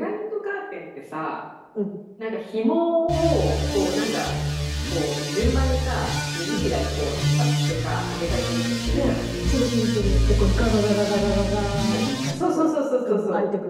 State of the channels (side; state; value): both; identical; correlation 1.00